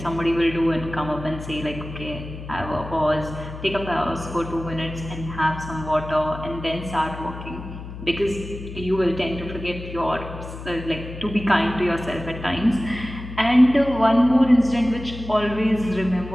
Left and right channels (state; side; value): noise; left; hum, 11 dB below the sound